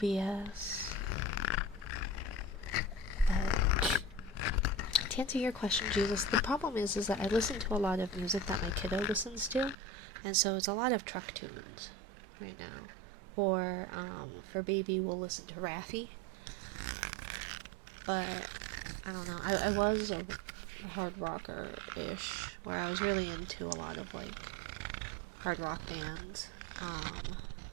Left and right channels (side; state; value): left; drops out; at 9.8 s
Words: But to answer your question, Jesus, the problem is that I listen to a lot of music that my kiddo listens to, and so it's a lot of truck tunes right now. Or her baby will listen to Raffi. But I don't know. I was a hard rocker-ish, where I was really into a lot of like hard rock bands.